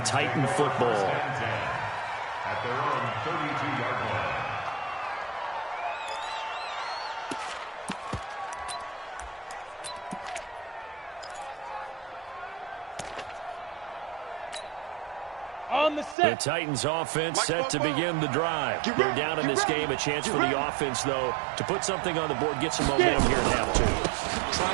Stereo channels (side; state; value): left; drops out; at 16.2 s